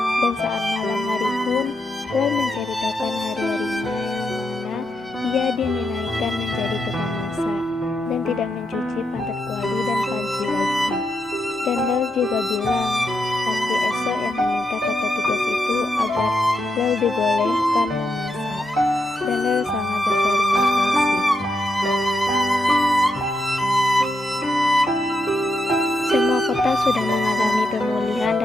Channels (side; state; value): both; normal; correlation 0.82